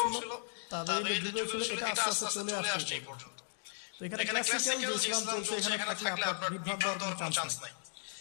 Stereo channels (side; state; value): right; silent; digital silence